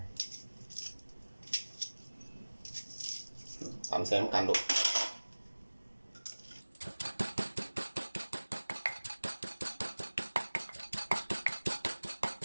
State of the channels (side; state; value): both; inverted; correlation -1.00